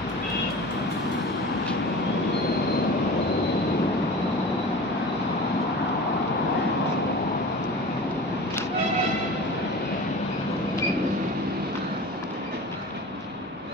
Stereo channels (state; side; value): normal; both; correlation 0.36